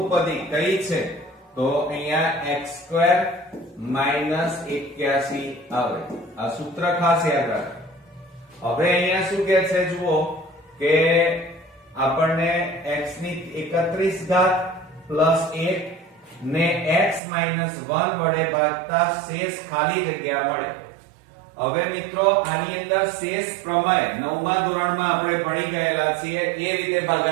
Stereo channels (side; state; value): left; drops out; at 17.2 s